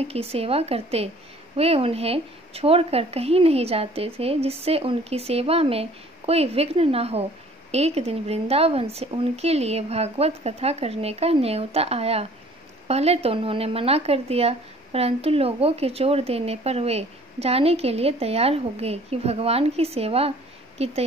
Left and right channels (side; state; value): both; normal; correlation 0.53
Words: की सेवा करते। वे उन्हें छोड़कर कहीं नहीं जाते थे जिससे उनकी सेवा में कोई विघ्न न हो। एक दिन वृंदावन से उनके लिए भागवत कथा करने का न्योता आया। पहले तो उन्होंने मना कर दिया, परंतु लोगों के जोर देने पर वे जाने के लिए तैयार हो गए कि भगवान की सेवा की